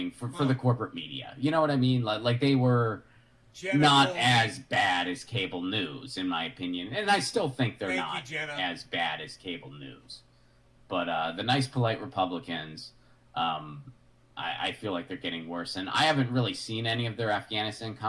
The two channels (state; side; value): identical; both; correlation 1.00